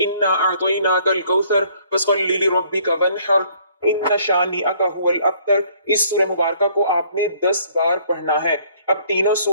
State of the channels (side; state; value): both; inverted; correlation -0.61